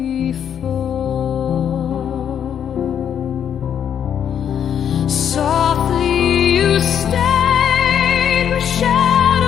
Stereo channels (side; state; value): right; quieter; 8.8 dB